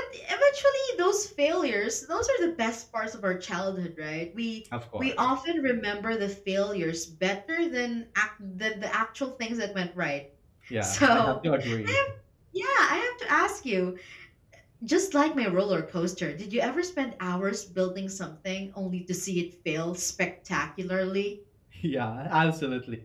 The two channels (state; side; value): identical; both; correlation 1.00